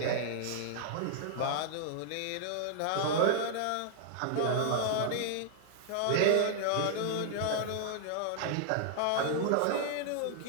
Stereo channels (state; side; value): different; both; correlation -0.01